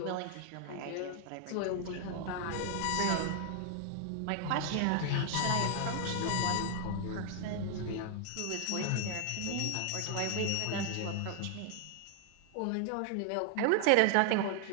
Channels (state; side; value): different; both; correlation 0.00